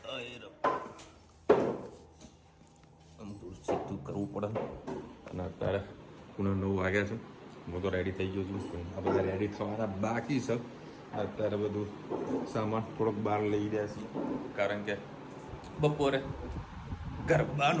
અમુક સીધું કરવું પડે અને અત્યારે પૂણા 9 વાગ્યા છે. હું તો રેડી થઈ ગયો છું. આ બધા રેડી થવાના બાકી છે. અત્યારે બધું સામાન થોડોક બહાર લઈ રહ્યા છીએ, કારણ કે બપોરે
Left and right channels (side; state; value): both; identical; correlation 1.00